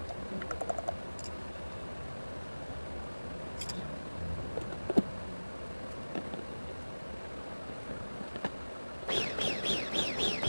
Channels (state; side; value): inverted; both; correlation -1.00